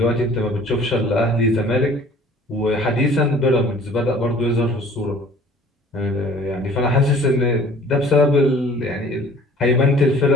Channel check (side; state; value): both; normal; correlation 0.51